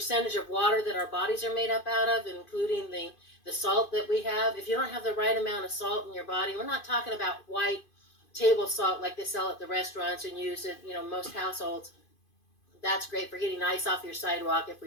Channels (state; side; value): late; right; 2.5 ms